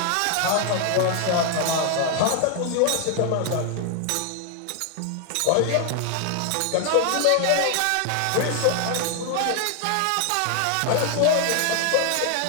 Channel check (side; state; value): both; different; correlation 0.00